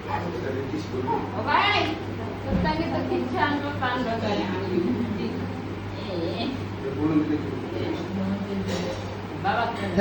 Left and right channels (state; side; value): identical; both; correlation 1.00